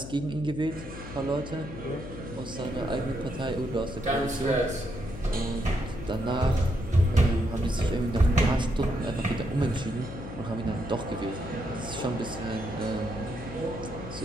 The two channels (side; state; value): left; noise; hum, 11 dB below the sound